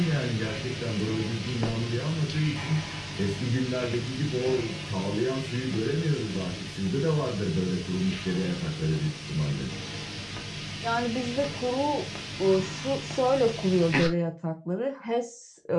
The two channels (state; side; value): identical; both; correlation 1.00